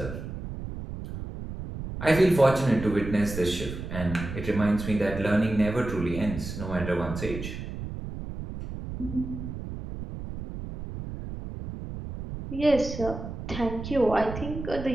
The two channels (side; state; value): right; noise; rumble, 8 dB below the sound